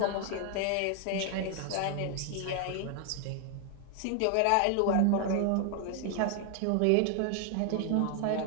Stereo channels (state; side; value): different; both; correlation 0.00